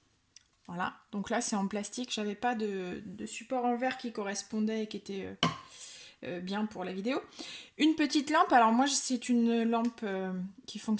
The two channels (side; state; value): both; identical; correlation 1.00